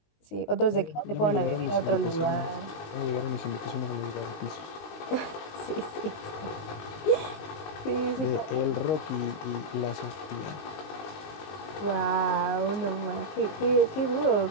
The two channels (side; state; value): right; late; 19 ms